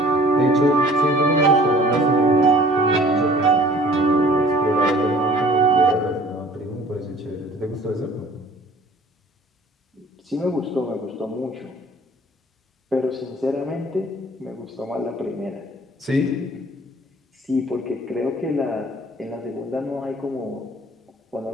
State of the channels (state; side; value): normal; both; correlation 0.51